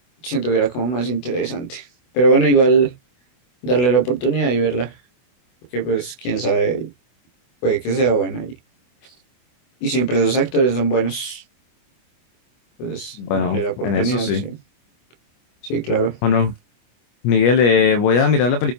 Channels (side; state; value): right; late; 24 ms